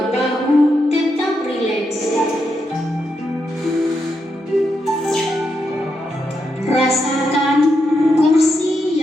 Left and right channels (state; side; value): normal; both; correlation 0.83